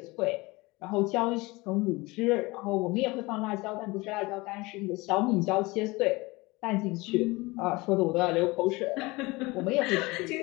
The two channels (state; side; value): quieter; right; 23.0 dB